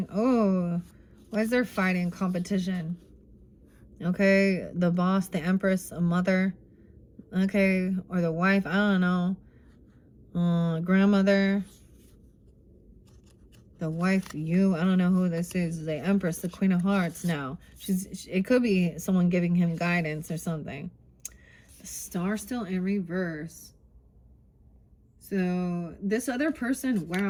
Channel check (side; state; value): both; identical; correlation 1.00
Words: Oh, why is there fighting, competition? Okay, the boss, the Empress, a mother. Okay, or the wife, I don't know. Grandmother. The wife, you, I don't know who this is. The Empress, the Queen of Hearts now. It could be someone giving him guidance or something. The Star still in reverse. So this other person,